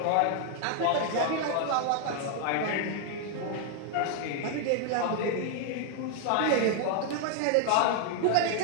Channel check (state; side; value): different; both; correlation 0.00